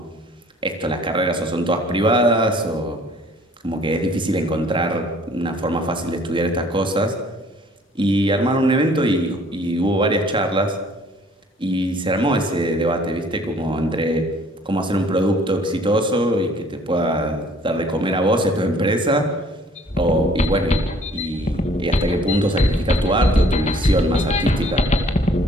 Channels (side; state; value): both; normal; correlation 0.57